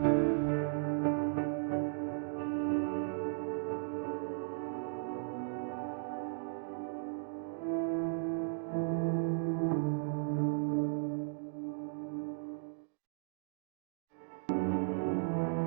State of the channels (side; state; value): left; silent; digital silence